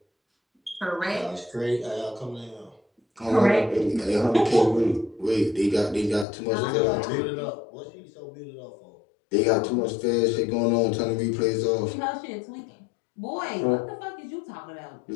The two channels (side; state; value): right; drops out; at 6.2 s